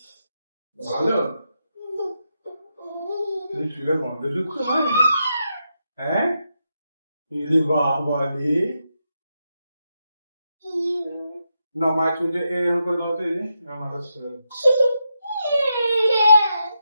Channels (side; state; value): both; inverted; correlation -0.84